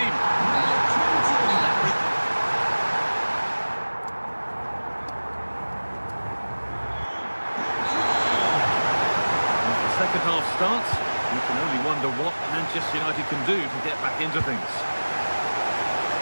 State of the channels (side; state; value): both; inverted; correlation -1.00